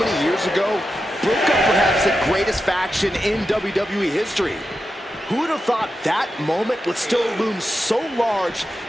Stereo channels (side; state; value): both; normal; correlation 0.89